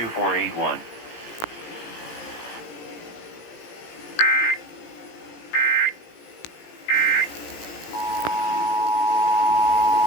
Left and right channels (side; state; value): right; late; 18 ms